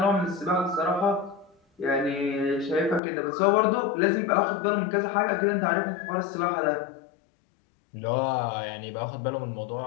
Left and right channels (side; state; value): right; drops out; at 3.0 s